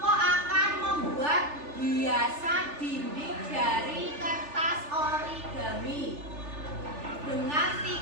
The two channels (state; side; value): late; left; 3.4 ms